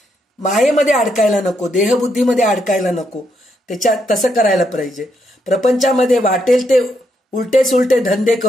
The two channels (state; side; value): normal; both; correlation 0.78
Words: मायेमध्ये अडकायला नको, देहबुद्धीमध्ये अडकायला नको. त्याच्यात तसं करायला पाहिजे. प्रपंचामध्ये वाटेल ते उलटे सुलटे धंदे